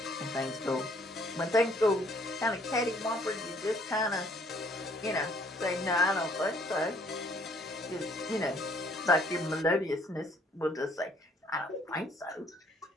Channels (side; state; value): both; normal; correlation 0.62